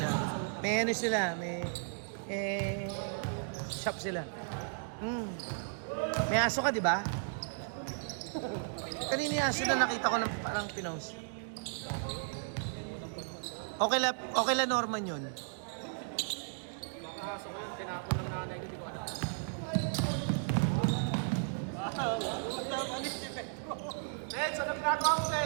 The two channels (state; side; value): silent; left; digital silence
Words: May ano sila, may shop sila. May aso ka, di ba? Kanina yung aso na nakita ko ng parang pinost. Okay la Norman yun. Nakakaso ko yung tinapon ng nanay ko, di ba? Neds, ano ginagawa mo,